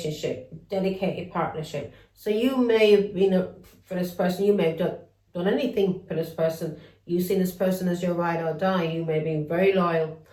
dedicated partnership. So you may have been for this person, you may have done anything for this person. You've seen this person as your ride or die. You may have been very loyal.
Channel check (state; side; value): identical; both; correlation 1.00